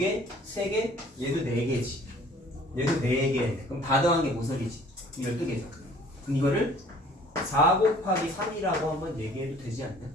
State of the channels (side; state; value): both; normal; correlation 0.53